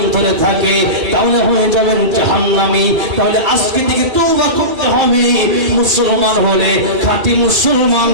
থাকে, তাহলে হয়ে যাবেন জাহান্নামী। তাহলে আজকে থেকে তওবা করতে হবে। মুসলমান হলে খাঁটি মুসলমান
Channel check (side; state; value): left; late; 2.3 ms